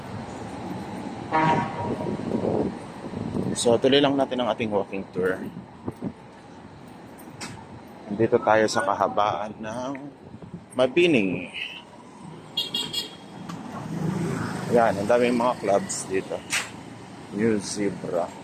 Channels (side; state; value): both; identical; correlation 1.00